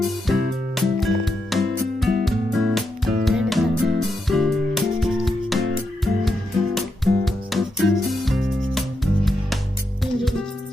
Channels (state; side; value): normal; both; correlation 0.84